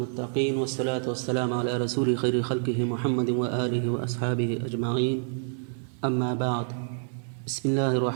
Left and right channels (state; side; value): silent; left; digital silence